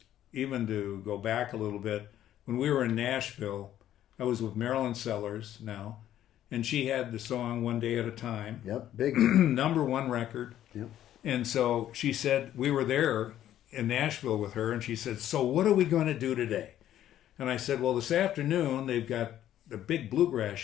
even to go back a little bit, when we were in Nashville, I was with Marilyn Sellers now, and she had the song One Day at a Time. Yep, big. Number one record. Yep. And so she said, we were there in Nashville with her, and she said, so what are we going to do today? And I said, well, this afternoon they've got the big bluegrass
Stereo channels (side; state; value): right; quieter; 11.9 dB